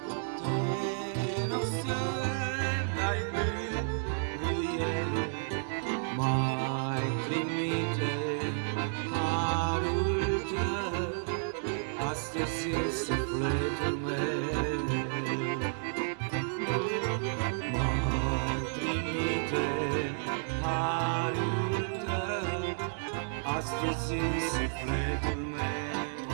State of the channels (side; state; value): left; silent; digital silence